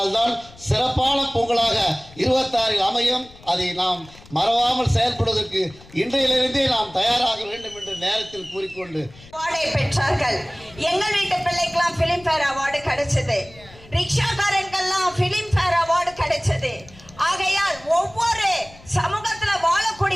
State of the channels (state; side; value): noise; left; rumble, 22 dB below the sound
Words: தான் சிறப்பான பொங்கலாக 26 அமையும். அதை நாம் மறவாமல் செயல்படுவதற்கு இன்றையிலிருந்தே நாம் தயாராக வேண்டும் என்று நேரத்தில் கூறிக்கொண்டு அவார்டை பெற்றார்கள். எங்கள் வீட்டு பிள்ளைக்கெல்லாம் பிலிம்பேர் அவார்டு கிடைச்சது, ரிக்ஷாக்காரங்கெல்லாம் பிலிம்பேர் அவார்டு கிடைச்சது. ஆகையால் ஒவ்வொரு சமூகத்தில்